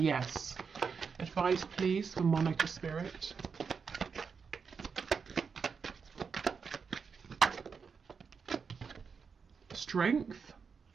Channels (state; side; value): quieter; left; 5.7 dB